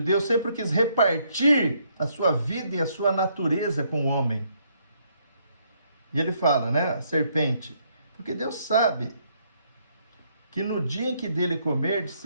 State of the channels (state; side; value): inverted; both; correlation -0.71